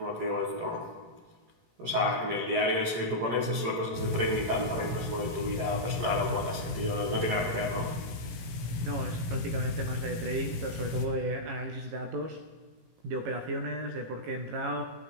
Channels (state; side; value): late; left; 18 ms